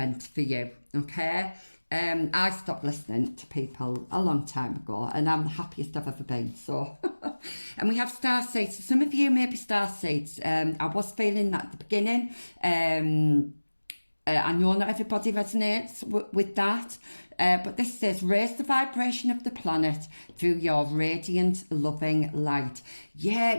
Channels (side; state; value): both; inverted; correlation -1.00